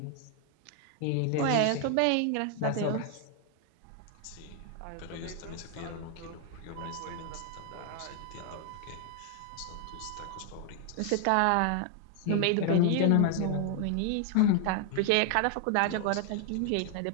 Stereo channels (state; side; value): different; both; correlation 0.00